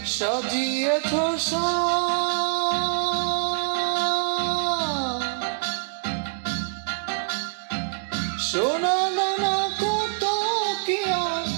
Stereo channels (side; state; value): left; silent; digital silence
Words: সাজিয়েছ সোনা দানা কত কি আর